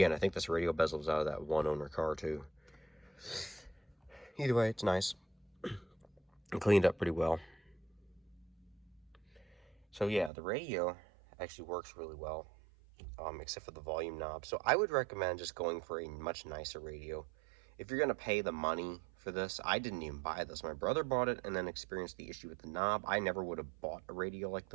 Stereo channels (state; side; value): drops out; left; at 10.3 s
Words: I think this radio bezel was out of that one-owner car too. Either way, it's nice. It cleaned up pretty well. So yeah, the radio actually works really well, except for the volume knob. So I would recommend just going for a much nicer radio. If you're going to pay the money for this, I didn't even buy this. My brother bought it and then experienced the issue with the knob. I never would have bought a radio like